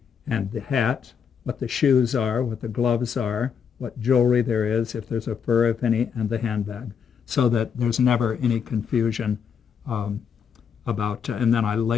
and the hat, what the shoes are, what the gloves are, what jewelry there is, if there's a fur, if any, and the handbag, so that there's never any confusion about, and then I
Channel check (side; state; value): right; quieter; 7.1 dB